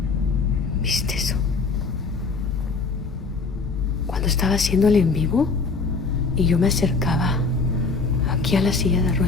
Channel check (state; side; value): quieter; right; 4.3 dB